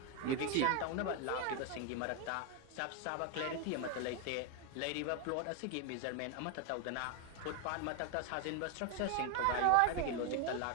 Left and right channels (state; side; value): different; both; correlation 0.01